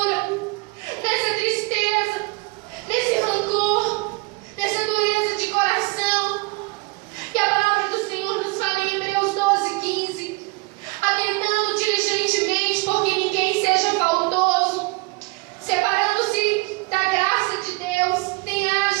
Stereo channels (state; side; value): quieter; left; 26.5 dB